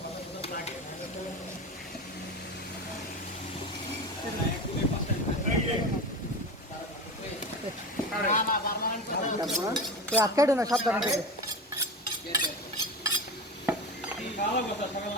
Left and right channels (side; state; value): both; normal; correlation 0.26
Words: আটকাইটো না সাবধান থেকে